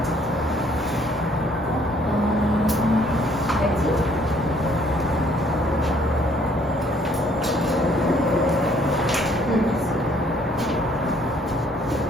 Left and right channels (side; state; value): both; normal; correlation 0.63